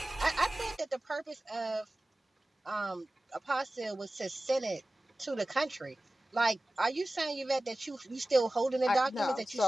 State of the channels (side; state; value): both; normal; correlation 0.96